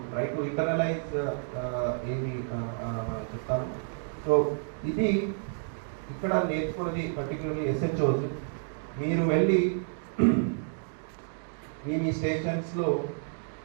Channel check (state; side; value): silent; left; digital silence